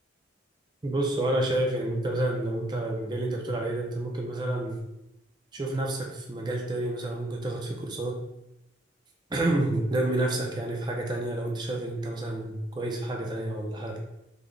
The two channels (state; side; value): normal; both; correlation 0.68